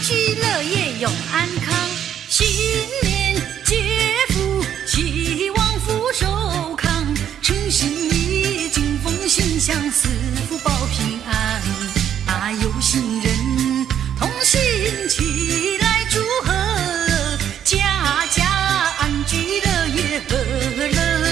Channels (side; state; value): left; quieter; 9.6 dB